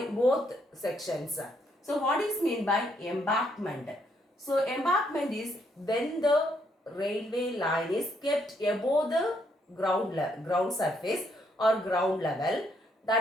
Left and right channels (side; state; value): both; normal; correlation 0.73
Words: both sections. So what is meant by embankment? So embankment is when the railway line is kept above the ground surface or ground level,